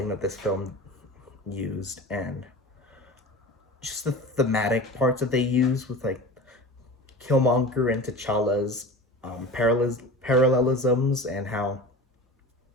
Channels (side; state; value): both; normal; correlation 0.34